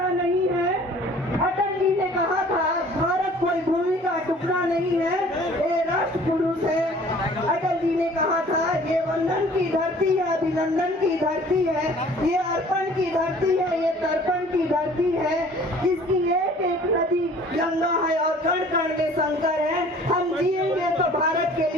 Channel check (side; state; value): both; normal; correlation 0.51